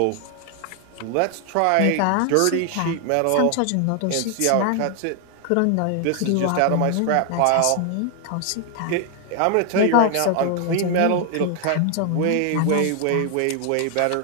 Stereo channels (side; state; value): both; different; correlation 0.00